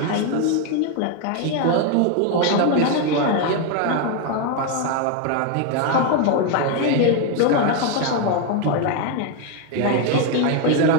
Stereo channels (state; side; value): different; both; correlation 0.01